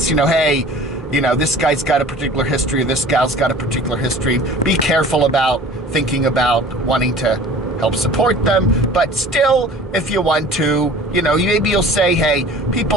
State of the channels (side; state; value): both; normal; correlation 0.45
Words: Hey. This guy's got a particular history, this gal's got a particular history. Be careful about thinking about wanting to help support them. But still, if you want to, maybe you'll say, hey,